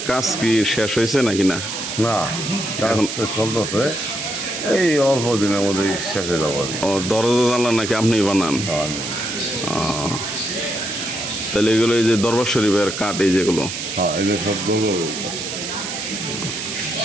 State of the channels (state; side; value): noise; right; hiss, 6 dB below the sound